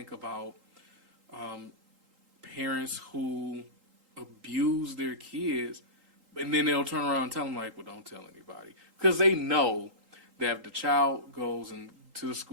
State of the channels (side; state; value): left; late; 3.8 ms